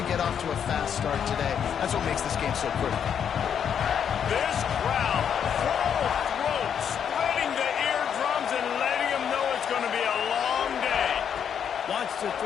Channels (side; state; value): right; quieter; 8.1 dB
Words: get off to a fast start today. That's what makes this game so critical. This crowd, full throat, splitting the eardrums and letting them know it's going to be a long day. Wants to